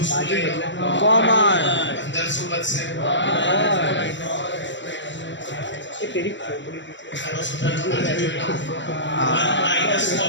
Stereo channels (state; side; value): late; right; 0.54 ms